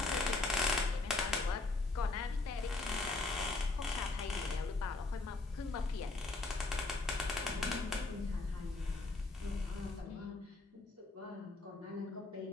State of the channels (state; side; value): quieter; right; 3.3 dB